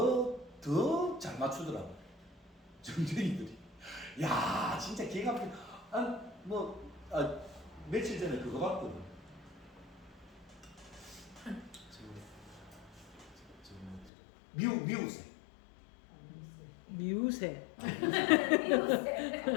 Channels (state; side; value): drops out; right; at 14.1 s